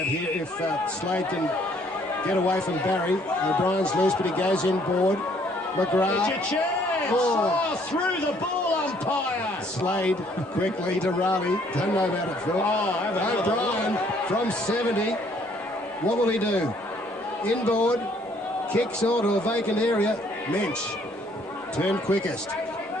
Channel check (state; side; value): normal; both; correlation 0.63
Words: here. If Slade can get away from Barry, O'Brien's loose, but he goes inboard. McGrath. It's your chance! Oh. Through the ball, umpire! Slade quickly to Raleigh. Don't know about it, Phil. O'Brien from 70. What will he do? Inboard, kicks onto a vacant area. Mensch, turn quickest.